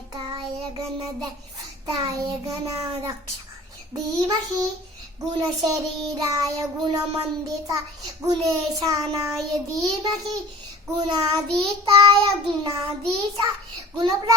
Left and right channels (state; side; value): normal; both; correlation 0.44